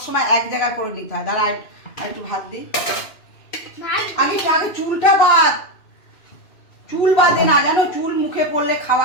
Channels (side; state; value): right; late; 2.6 ms